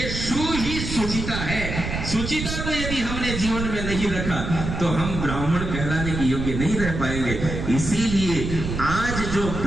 शु ही सुचिता है। सुचिता को यदि हमने जीवन में नहीं रखा तो हम ब्राह्मण कहलाने के योग्य नहीं रह पाएंगे। इसीलिए आज जो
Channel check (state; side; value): noise; right; rumble, 5 dB below the sound